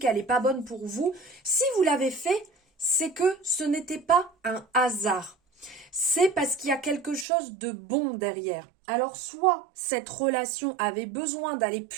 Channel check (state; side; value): drops out; left; at 7.2 s